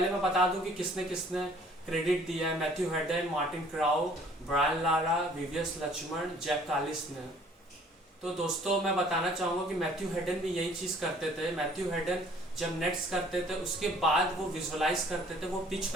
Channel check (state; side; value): normal; both; correlation 0.56